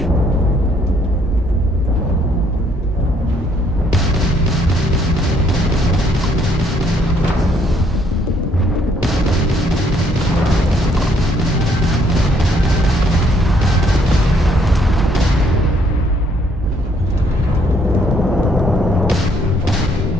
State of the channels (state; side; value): normal; both; correlation 0.67